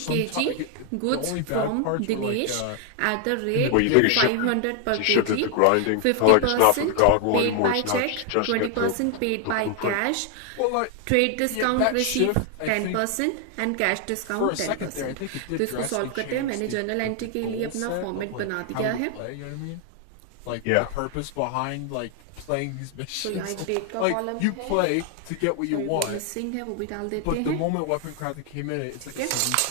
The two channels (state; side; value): different; both; correlation 0.00